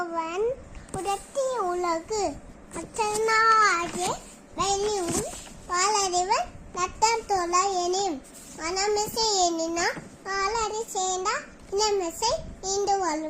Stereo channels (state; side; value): identical; both; correlation 1.00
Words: புரட்டிய உலகு அச்சனாகிய வெள்ளியும் பாலறிவன் நட்டம் தோல எனின் மனமிசை எண்ணினா பாலறி சேர்ந்தா இனமிசை ஈண்டு